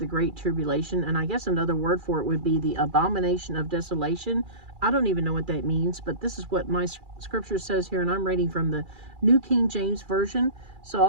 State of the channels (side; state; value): left; late; 2.4 ms